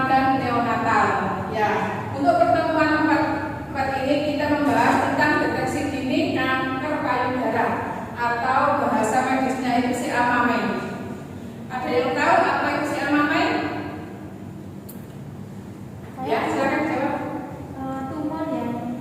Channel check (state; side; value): identical; both; correlation 1.00